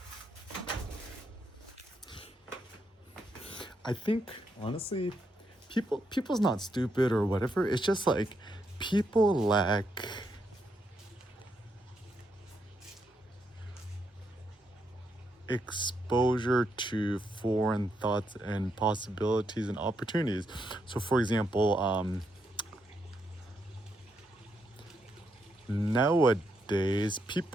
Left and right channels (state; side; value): normal; both; correlation 0.79